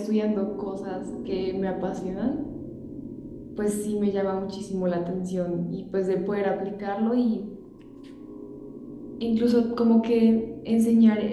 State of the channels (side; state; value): both; identical; correlation 1.00